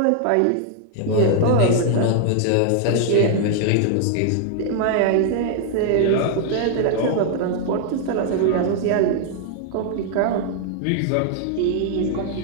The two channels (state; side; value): different; both; correlation 0.00